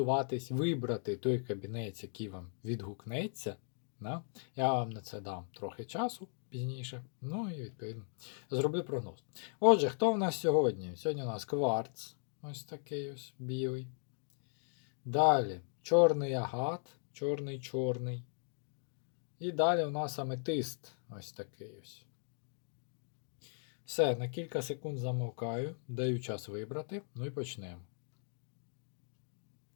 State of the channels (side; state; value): right; silent; 53 dB below the other